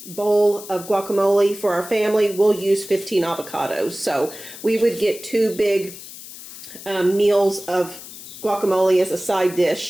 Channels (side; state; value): left; noise; hiss, 14 dB below the sound